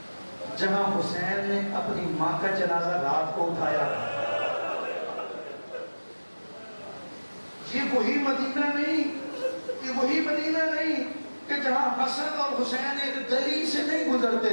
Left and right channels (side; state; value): both; inverted; correlation -1.00